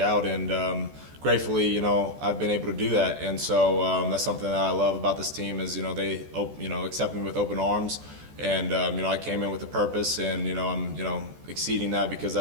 And gratefully, I've been able to do that. And so that's something that I love about this team is, they, accept me with open arms. And I came in with a purpose, and I'm exceeding that because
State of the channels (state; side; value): late; left; 14 ms